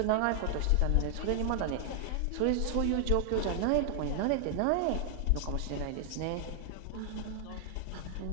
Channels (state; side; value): different; both; correlation 0.00